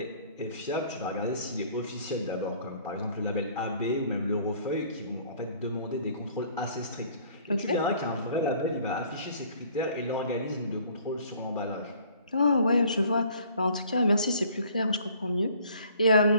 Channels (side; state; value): both; inverted; correlation -0.56